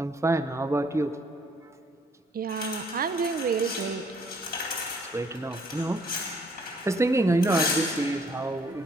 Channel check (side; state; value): both; normal; correlation 0.64